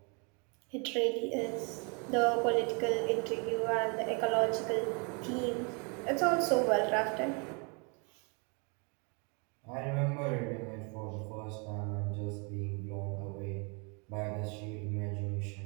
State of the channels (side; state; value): left; quieter; 34.0 dB